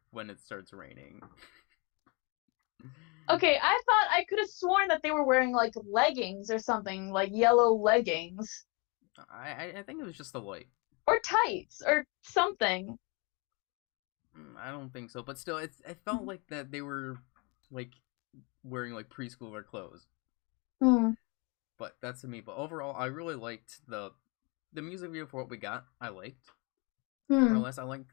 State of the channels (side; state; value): right; quieter; 30.5 dB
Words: when it starts raining. Okay, I thought I could have sworn that they were wearing like leggings or something, like yellow leggings. I think it was just the light. Or tights or something. I don't think so, but still, it felt like that they were like wearing like preschooler clothes. Hmm. But that's to me. But overall, I really liked the music video for what we got. I liked more or Hmm. less. I liked